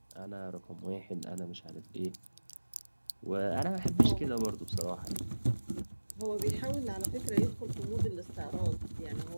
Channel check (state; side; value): inverted; both; correlation -1.00